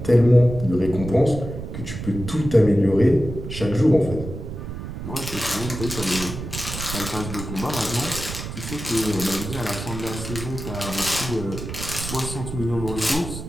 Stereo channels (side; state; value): right; noise; rumble, 8 dB below the sound